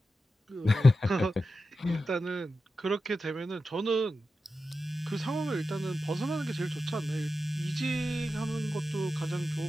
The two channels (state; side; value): normal; both; correlation 0.91